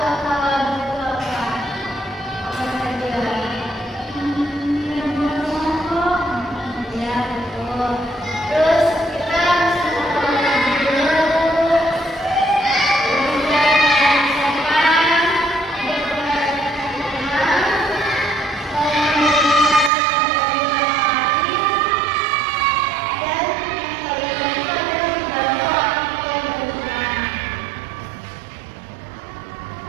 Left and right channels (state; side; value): drops out; left; at 19.9 s